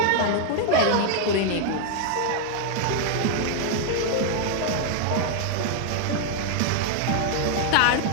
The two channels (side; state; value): both; different; correlation 0.00